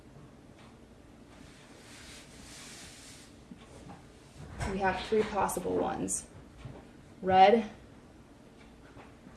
We have 3 possible ones: red,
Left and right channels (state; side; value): identical; both; correlation 1.00